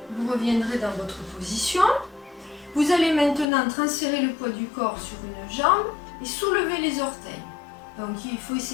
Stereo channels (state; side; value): drops out; right; at 3.5 s